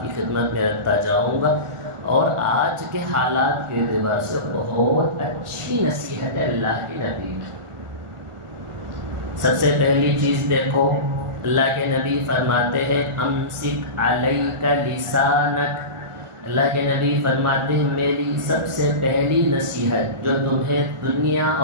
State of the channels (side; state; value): left; late; 1.4 ms